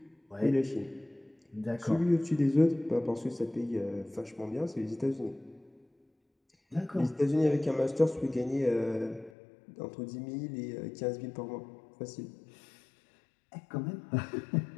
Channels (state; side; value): drops out; right; at 9.3 s